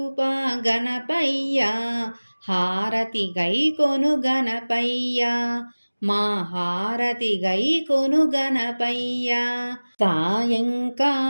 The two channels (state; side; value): inverted; both; correlation -1.00